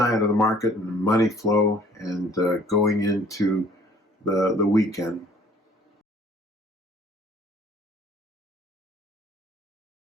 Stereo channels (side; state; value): both; normal; correlation 0.55